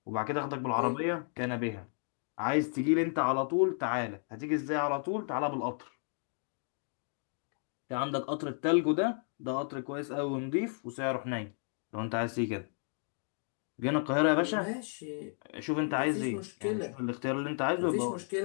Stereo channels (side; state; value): right; silent; 56 dB below the other